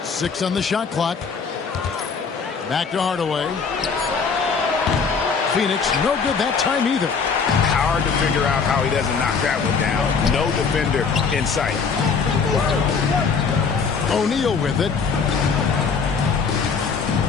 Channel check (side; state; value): right; quieter; 5.5 dB